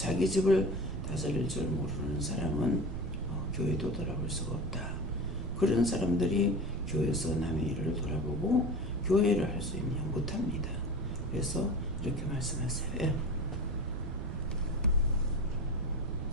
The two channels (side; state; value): right; noise; rumble, 6 dB below the sound